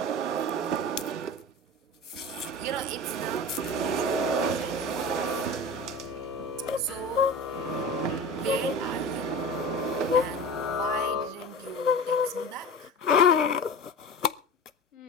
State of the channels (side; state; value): both; normal; correlation 0.32